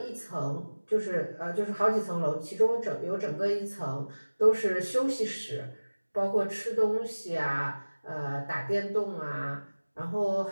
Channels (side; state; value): both; inverted; correlation -1.00